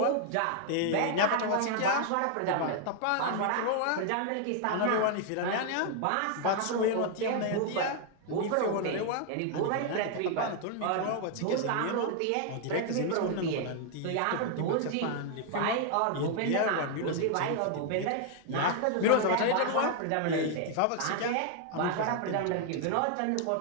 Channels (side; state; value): both; different; correlation 0.00